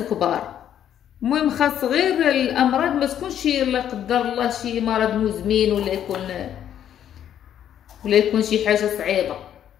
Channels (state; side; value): quieter; right; 10.1 dB